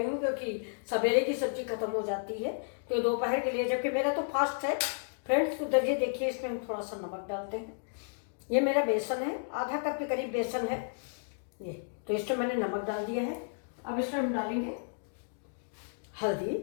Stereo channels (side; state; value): right; silent; digital silence